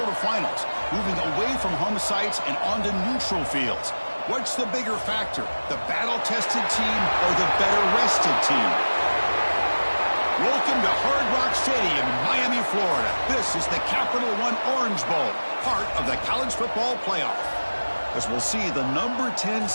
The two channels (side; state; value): both; inverted; correlation -1.00